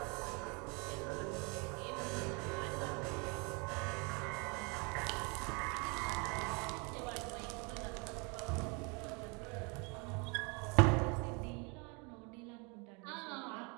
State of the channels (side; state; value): left; quieter; 31.5 dB